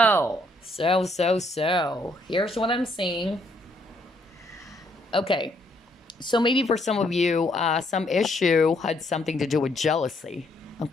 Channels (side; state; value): both; normal; correlation 0.70